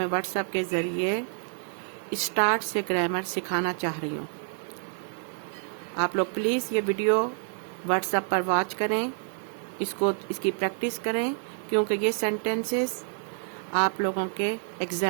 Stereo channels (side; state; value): left; silent; digital silence